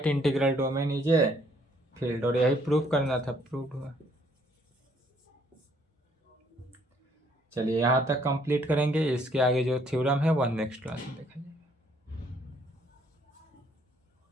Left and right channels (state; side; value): normal; both; correlation 0.65